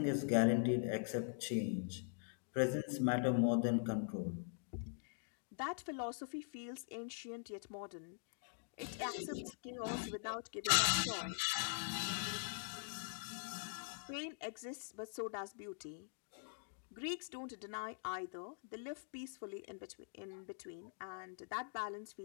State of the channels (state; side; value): silent; right; digital silence